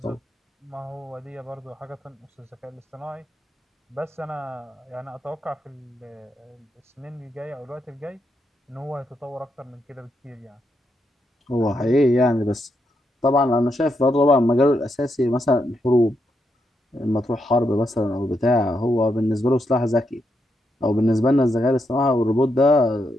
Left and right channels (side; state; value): both; normal; correlation 0.81